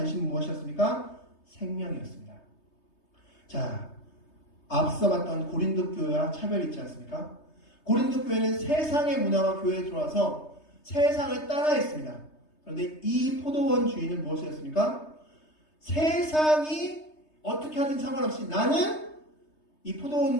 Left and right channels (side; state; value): right; late; 3.3 ms